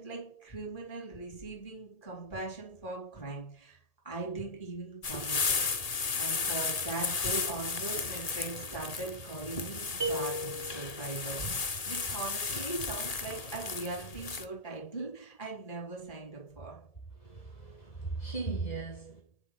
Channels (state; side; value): late; right; 1.8 ms